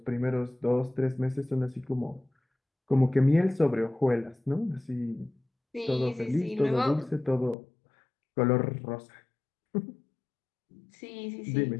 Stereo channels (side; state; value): right; drops out; at 7.6 s